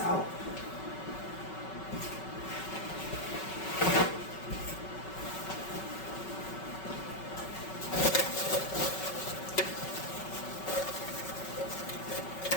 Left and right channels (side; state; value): right; late; 5.3 ms